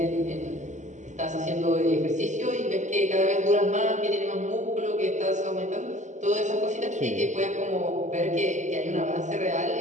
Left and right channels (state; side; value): late; left; 0.35 ms